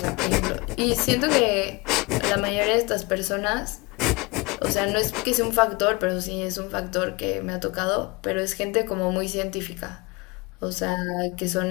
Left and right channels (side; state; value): right; quieter; 25.6 dB